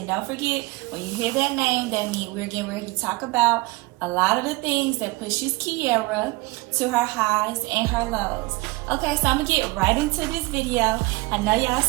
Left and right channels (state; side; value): quieter; left; 23.1 dB